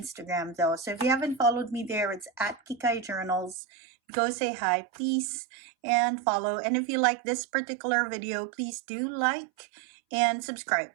though. So if you haven't followed me there, it's at Kikai Journals. Go say hi, please, and follow. And if you like this particular video, please do like and subscribe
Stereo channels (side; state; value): left; drops out; at 3.6 s